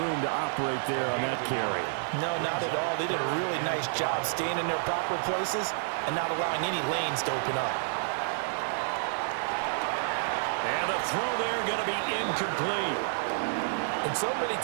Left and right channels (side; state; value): left; silent; 58 dB below the other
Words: to operate there on that carry. No, not at all. They did a really nice job staying in their proper places and not allowing any lanes to open up. And the throw there going to be incomplete. And so many